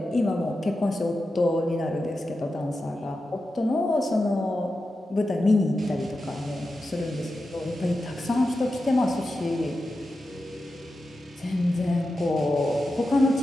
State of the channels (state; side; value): normal; both; correlation 0.91